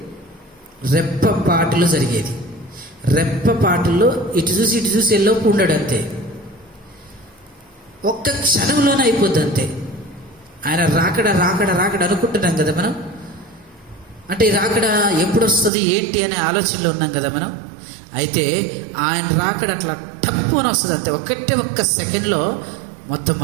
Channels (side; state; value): left; drops out; at 15.7 s